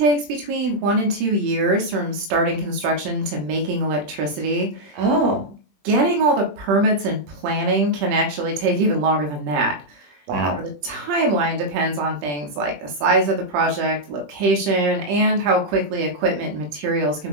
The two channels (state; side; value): late; left; 20 ms